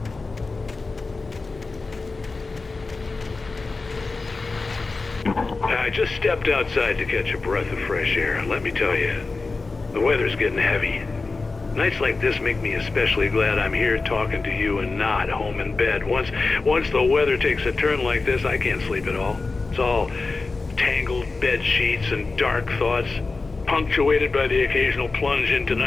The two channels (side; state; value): right; quieter; 3.8 dB